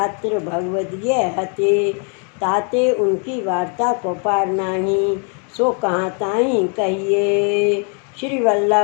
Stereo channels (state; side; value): quieter; right; 39.9 dB